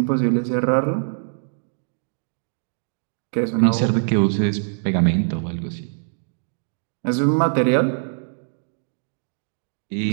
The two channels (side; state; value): left; silent; digital silence